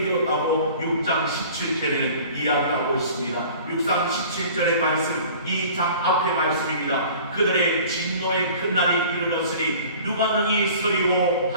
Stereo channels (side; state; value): both; inverted; correlation -0.46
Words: 되었다고 6장 17절에는 이야기하고 있습니다. 6장 17절의 말씀, 이 장 앞의 말씀입니다. 그들의 진노의 큰 날이 이르렀으니 누가 능히 서리오